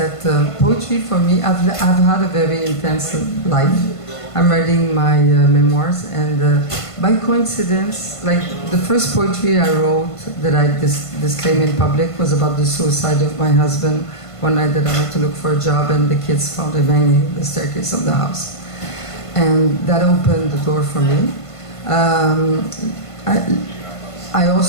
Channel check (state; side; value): late; right; 1.5 ms